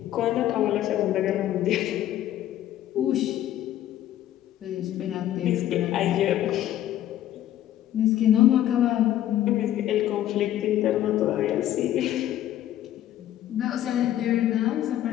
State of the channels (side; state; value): right; quieter; 12.4 dB